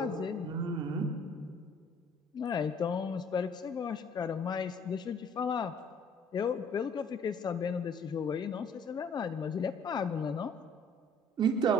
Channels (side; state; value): both; normal; correlation 0.57